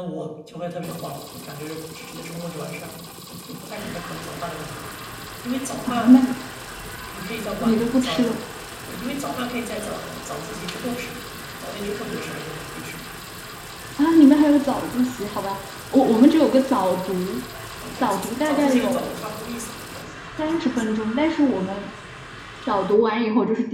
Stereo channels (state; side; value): identical; both; correlation 1.00